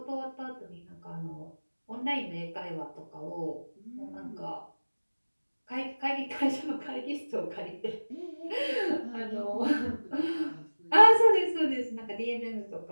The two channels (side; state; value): both; inverted; correlation -1.00